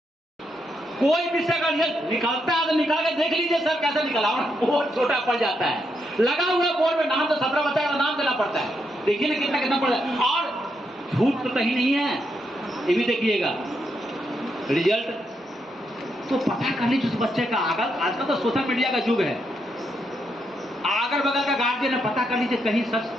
कोई विषय का रिजल्ट निकलता है तो निकाल के देख लीजिए सर कैसे निकला, बहुत छोटा पड़ जाता है। लगा हुआ बोर्ड में नाम, तो 17 बच्चा का नाम देना पड़ता है, देखिए ना कितना कितना पड़ जाता है। और झूठ तो कहीं नहीं है, ये भी देखिएगा रिजल्ट। तो पता कर लीजिए उस बच्चे का। आजकल तो सोशल मीडिया का युग है। अगल बगल का गार्जियन है, पता कर लीजिए कहीं सच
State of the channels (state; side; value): normal; both; correlation 0.80